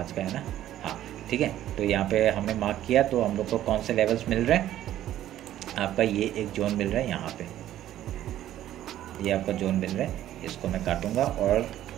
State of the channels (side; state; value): left; quieter; 12.6 dB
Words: का है ना, हाँ ठीक है। तो यहाँ पे हमने मार्क किया, तो हम लोग को कौन से लेवल्स मिल रहे हैं, आपका ये एक जोन मिल रहा है यहाँ पे, ये आपका जोन मिल रहा है। इसको मैं काटूंगा और